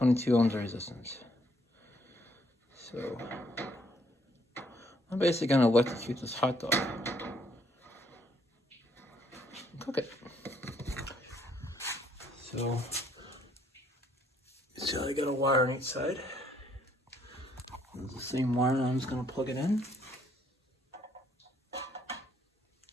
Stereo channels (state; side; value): normal; both; correlation 0.68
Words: of resistance. So I'm basically gonna electrocute this hot dog and cook it. So I got a wire on each side. It's the same wire, and I'm just gonna plug it in.